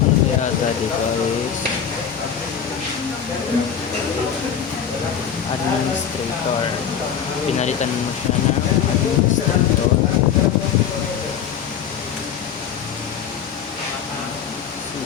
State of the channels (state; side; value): quieter; right; 8.1 dB